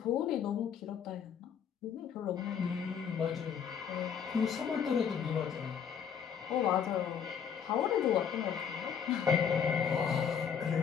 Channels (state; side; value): quieter; right; 7.5 dB